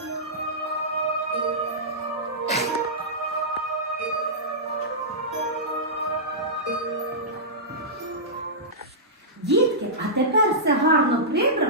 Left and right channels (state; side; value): normal; both; correlation -0.14